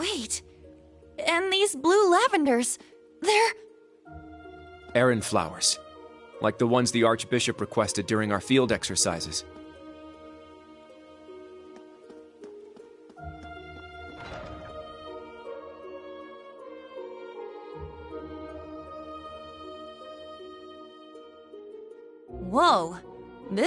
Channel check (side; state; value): both; identical; correlation 1.00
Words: and these blue lavenders, they're... Errand flowers, like the ones the Archbishop requested during our field exercises. Whoa,